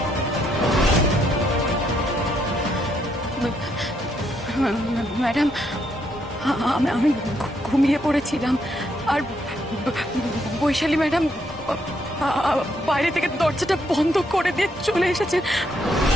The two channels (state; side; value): normal; both; correlation 0.75